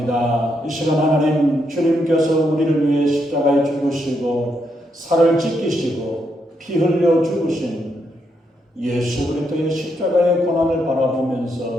이 시간 하나님, 주님께서 우리를 위해 십자가에 죽으시고 살을 찢기시고 피 흘려 죽으신 예수 그리스도의 십자가의 고난을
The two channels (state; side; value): normal; both; correlation 0.79